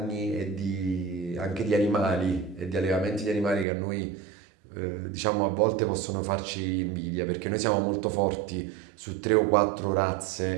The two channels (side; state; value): left; drops out; at 3.7 s